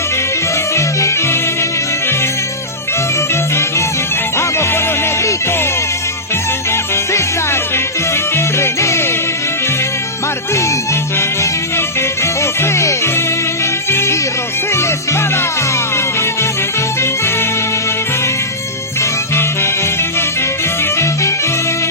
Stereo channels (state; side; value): normal; both; correlation -0.14